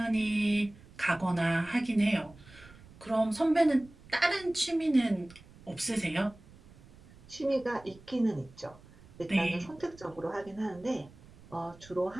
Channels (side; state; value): right; noise; rumble, 23 dB below the sound